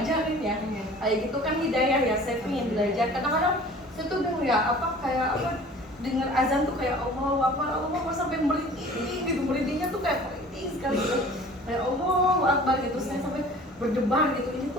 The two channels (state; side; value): normal; both; correlation 0.46